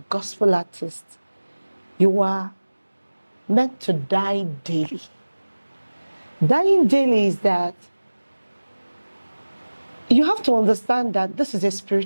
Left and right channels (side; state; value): both; inverted; correlation -1.00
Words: artist, you are meant to die daily. Dying daily is that you have to understand that this is a